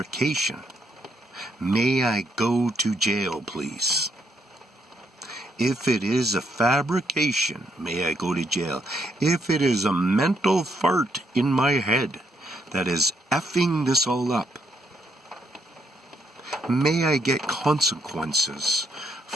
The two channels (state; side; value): normal; both; correlation 0.75